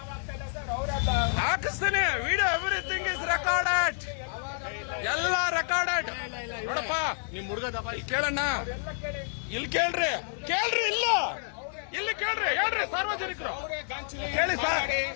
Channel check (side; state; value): right; silent; 59 dB below the other